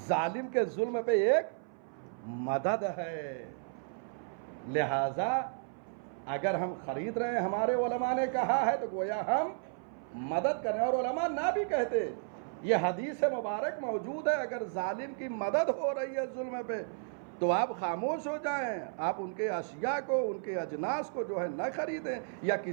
ظالم کے ظلم پہ ایک مدد ہے۔ لہذا اگر ہم خرید رہے ہیں، ہمارے علماء نے کہا ہے تو گویا ہم مدد کر رہے ہیں، اور علماء نہ بھی کہتے، یہ حدیث مبارک موجود ہے، اگر ظالم کی مدد ہو رہی ہے ظلم پہ تو آپ خاموش ہو جائیں، آپ ان کے اشیاء کو، ان کے اجناس کو جو ہے نہ خریدیں، یا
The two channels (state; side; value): silent; left; 56 dB below the other